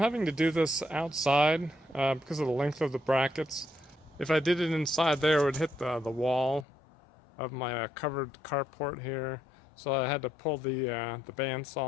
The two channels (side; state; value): right; drops out; at 6.7 s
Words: to do this outside because of the length of the brackets. If I did it inside there, it would hit the wall of my covered carport here. So I had to pull the